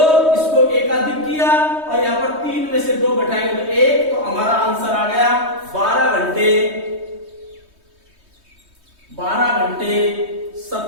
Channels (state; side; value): late; left; 3.2 ms